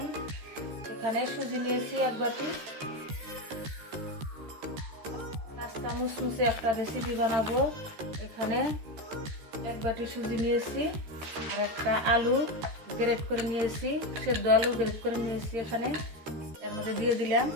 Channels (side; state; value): left; late; 13 ms